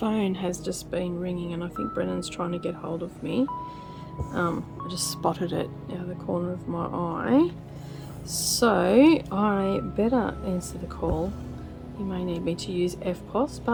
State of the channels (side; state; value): both; identical; correlation 1.00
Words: has just been ringing and I think Brennan's trying to get hold of me. I just spotted it out of the corner of my eye. So I better answer the call. You may need me to use FPOS,